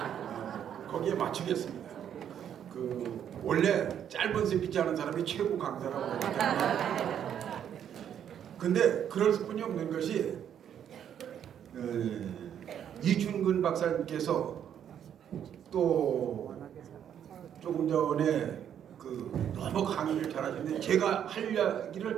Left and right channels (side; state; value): left; quieter; 9.3 dB